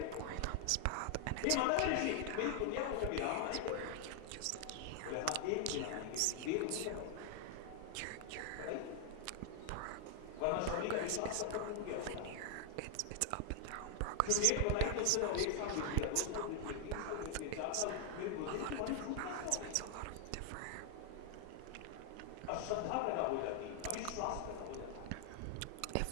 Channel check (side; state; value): both; different; correlation 0.00